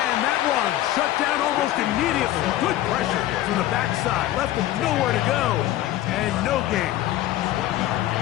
that one shut down almost immediately. Good pressure from the backside. Left him nowhere to go. And no gain.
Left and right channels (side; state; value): right; quieter; 14.2 dB